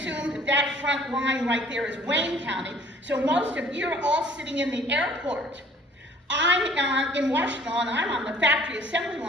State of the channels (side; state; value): both; normal; correlation 0.54